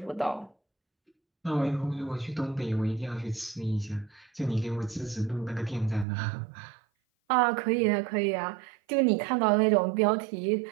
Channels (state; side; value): drops out; left; at 6.1 s